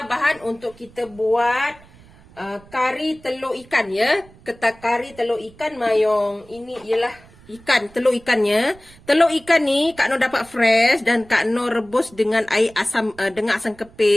bahan untuk kita buat kari telur ikan ya. Kari telur ikan mayong. Ini ialah telur ikannya. Telur ikan ni Kak Noh dapat fresh dan Kak Noh rebus dengan air asam dengan asam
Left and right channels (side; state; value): right; noise; rumble, 25 dB below the sound